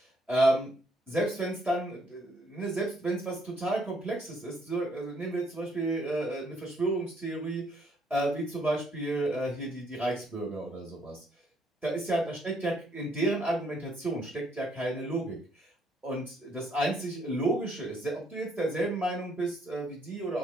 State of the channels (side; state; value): both; normal; correlation 0.69